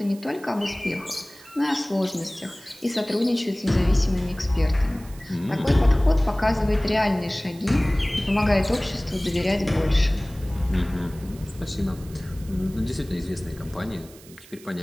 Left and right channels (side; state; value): right; noise; hiss, 22 dB below the sound